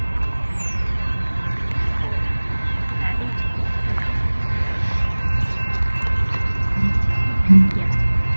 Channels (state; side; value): inverted; both; correlation -1.00